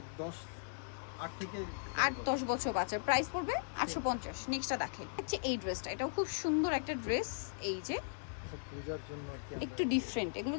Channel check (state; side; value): silent; right; digital silence